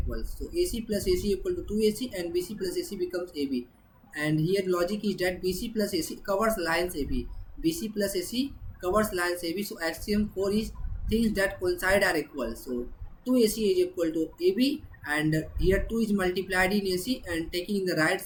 So AC plus AC equal to 2AC, and BC plus AC becomes AB. And here logic is that BC plus AC covers lines AB. BC plus AC covers lines AB. So axiom 4 is things that coincide are equal. So 2AC is equal to AB, and here 2 is multiplied in AC, and taking in the right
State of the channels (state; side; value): identical; both; correlation 1.00